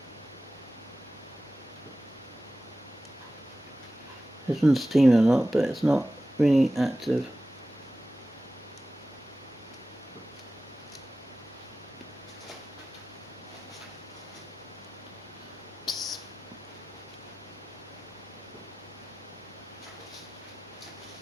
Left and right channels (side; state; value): both; normal; correlation 0.95